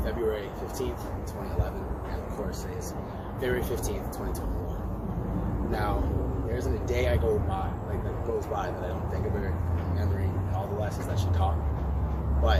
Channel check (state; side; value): identical; both; correlation 1.00